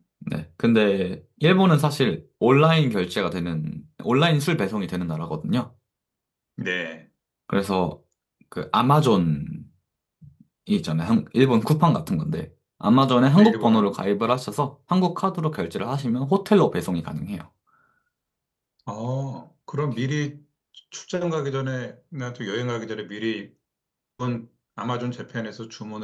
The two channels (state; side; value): identical; both; correlation 1.00